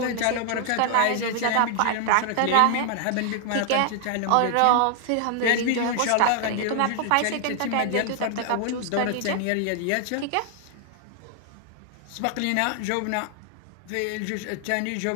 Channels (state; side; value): different; both; correlation 0.00